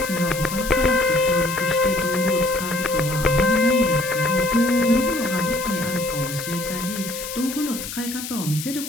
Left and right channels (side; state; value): left; noise; hiss, 9 dB below the sound